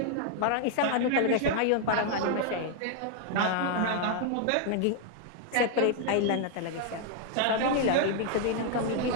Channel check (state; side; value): different; both; correlation 0.00